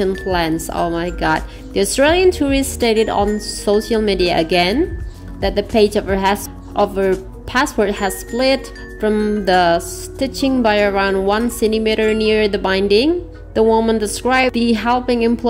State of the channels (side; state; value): both; identical; correlation 1.00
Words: plans. Oh my god. The Australian tourist stated on social media again that the page of her passport has split from the stitching by around 1 centimeter near the binding. The woman described the helping